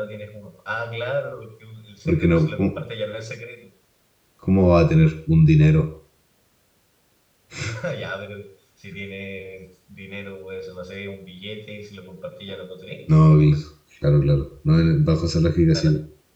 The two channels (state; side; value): identical; both; correlation 1.00